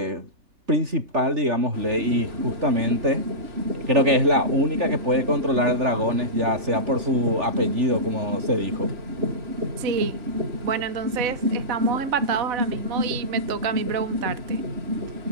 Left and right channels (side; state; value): left; late; 3.4 ms